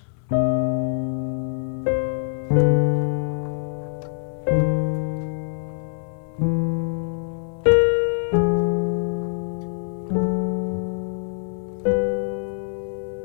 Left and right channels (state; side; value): silent; right; 62 dB below the other